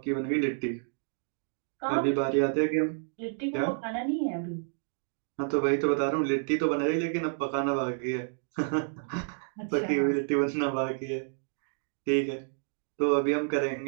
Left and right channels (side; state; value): left; silent; 58 dB below the other